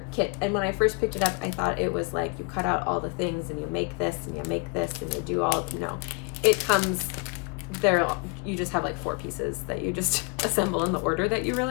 kit. And when I first picked it up, I thought it was like you cut out all the things and you make this and you make this and you do all, no. It comes there, you just have like 4 pieces that you just assemble in the order that you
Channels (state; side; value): quieter; right; 31.9 dB